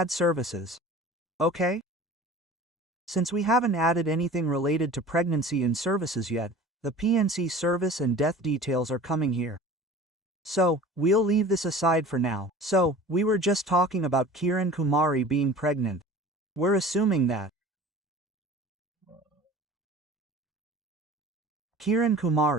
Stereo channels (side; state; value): both; normal; correlation 0.41